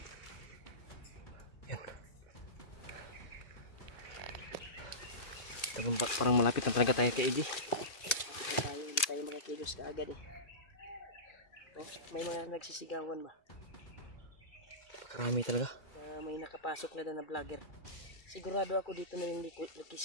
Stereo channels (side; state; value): right; late; 2.3 ms